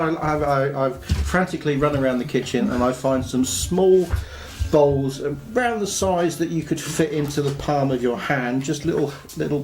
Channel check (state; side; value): identical; both; correlation 1.00